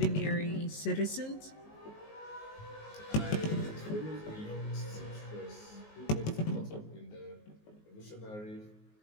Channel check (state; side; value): late; right; 19 ms